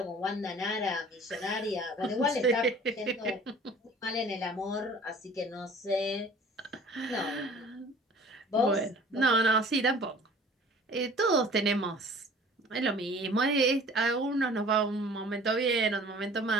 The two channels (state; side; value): normal; both; correlation 0.48